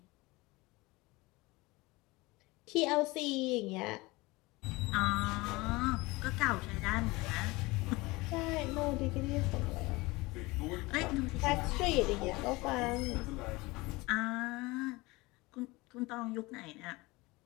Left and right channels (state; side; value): quieter; right; 22.5 dB